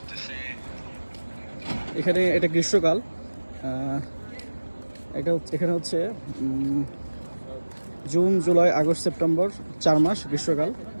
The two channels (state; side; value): inverted; both; correlation -1.00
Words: এখানে এটা গ্রীষ্মকাল। এখানে হচ্ছে জুন, জুলাই, আগস্ট, সেপ্টেম্বর 4 মাস গ্রীষ্মকাল।